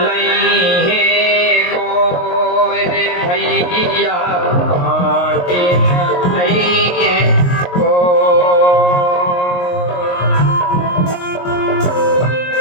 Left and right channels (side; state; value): right; late; 22 ms